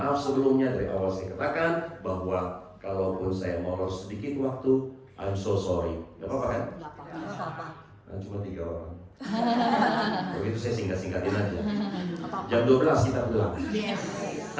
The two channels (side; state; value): both; identical; correlation 1.00